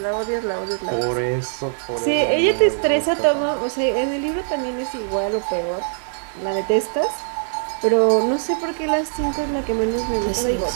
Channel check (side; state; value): left; silent; 64 dB below the other